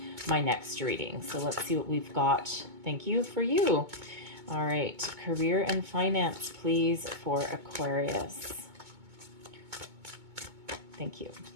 my next reading. So let's see what we've got. Thank you for you. All right, career and finance, please, for Aquarius. Thank you.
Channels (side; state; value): left; late; 2.2 ms